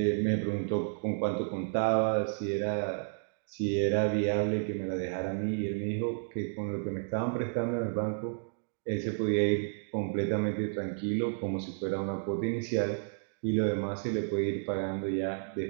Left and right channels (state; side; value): silent; left; digital silence